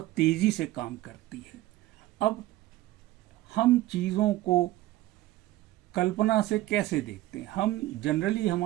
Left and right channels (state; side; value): quieter; left; 16.3 dB